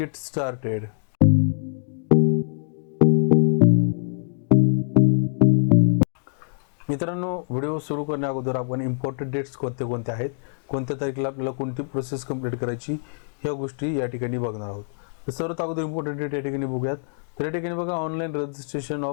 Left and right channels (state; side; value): silent; right; digital silence